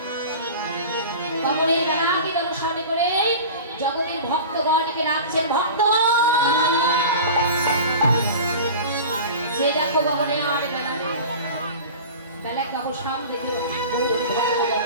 কবরের বেলাকে দর্শন করে জগতের ভক্তগণকে রাখছেন ভক্ত সে দেখো কবরে আরে বেলা বেলা কাবো সামনে দেখো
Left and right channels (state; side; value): inverted; both; correlation -0.35